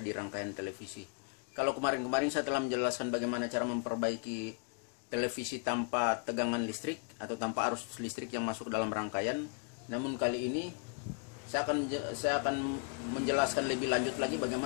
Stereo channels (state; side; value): quieter; right; 37.3 dB